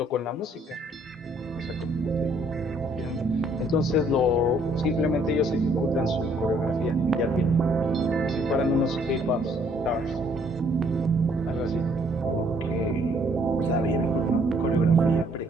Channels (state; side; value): normal; both; correlation 0.64